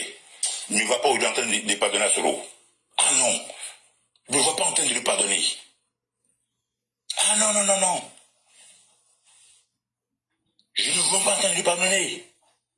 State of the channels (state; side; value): identical; both; correlation 1.00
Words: ne va pas aujourd'hui en train de pardonner à Soro. Ah non, je ne vois pas en train de le pardonner. Ah non, non, non, non. Je ne vois pas en train de le pardonner.